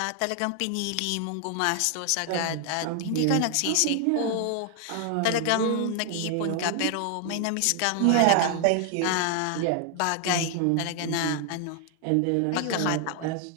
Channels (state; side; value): different; both; correlation 0.00